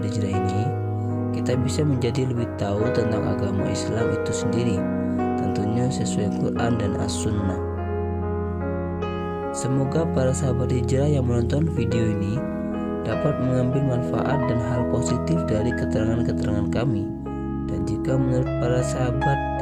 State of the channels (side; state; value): both; identical; correlation 1.00